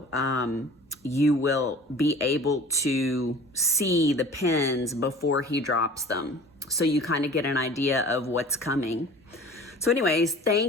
You will be able to see the pens before he drops them. So you kind of get an idea of what's coming. So anyways,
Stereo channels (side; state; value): both; normal; correlation 0.43